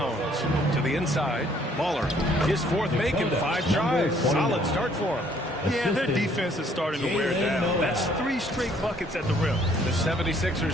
To the inside, Baller. His fourth make in 5 tries. Solid start for him. Yeah, their defense is starting to wear down. That's 3 straight buckets at the rim. The 76ers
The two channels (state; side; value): normal; both; correlation 0.63